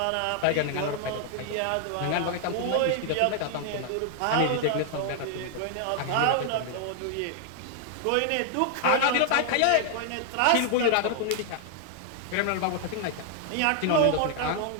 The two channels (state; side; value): different; both; correlation 0.00